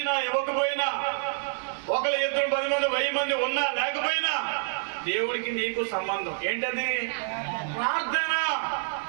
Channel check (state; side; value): silent; left; digital silence